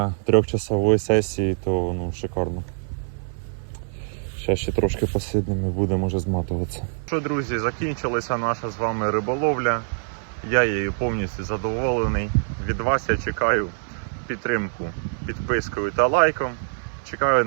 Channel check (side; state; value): left; silent; 60 dB below the other